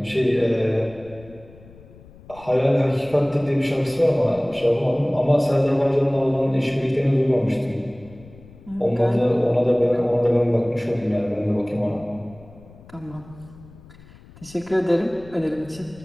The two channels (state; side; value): noise; left; rumble, 22 dB below the sound